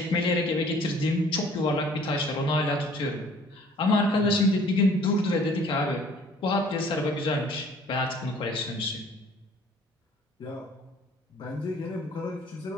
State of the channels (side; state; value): both; normal; correlation 0.54